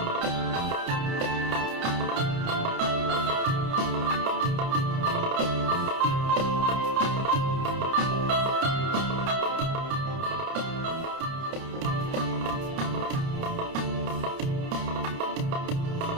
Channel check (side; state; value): left; late; 29 ms